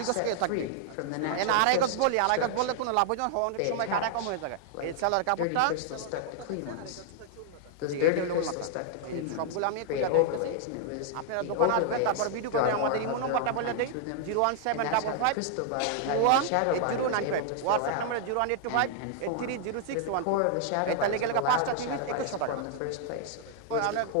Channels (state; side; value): different; both; correlation -0.01